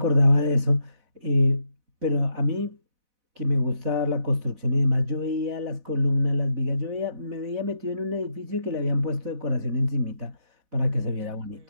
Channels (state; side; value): late; left; 4.1 ms